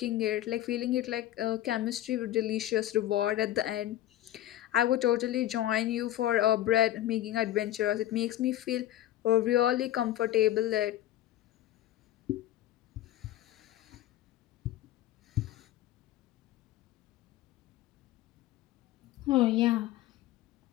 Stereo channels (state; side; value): quieter; right; 13.6 dB